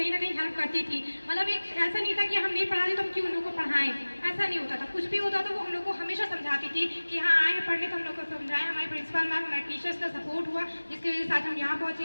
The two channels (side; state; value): both; inverted; correlation -1.00